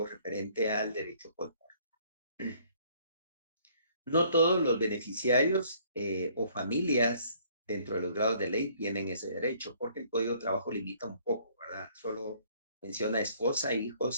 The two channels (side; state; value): both; inverted; correlation -0.60